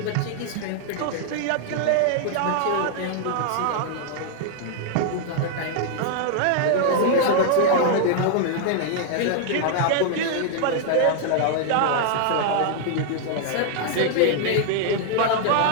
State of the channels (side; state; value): both; different; correlation -0.01